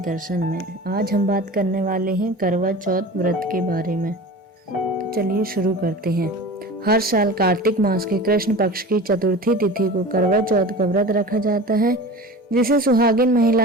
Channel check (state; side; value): normal; both; correlation 0.35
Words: में। आज हम बात करने वाले हैं करवा चौथ व्रत के बारे में। तो चलिए शुरू करते हैं। हर साल कार्तिक मास के कृष्ण पक्ष की चतुर्थी तिथि को करवा चौथ का व्रत रखा जाता है, जिसे सुहागिन